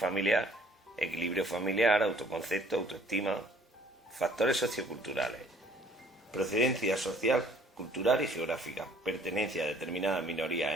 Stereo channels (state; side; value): normal; both; correlation 0.58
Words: equilibrio familiar, autoconcepto, autoestima. Factores socioculturales, procedencia social, cultural y geográfica, pertenencia a determinadas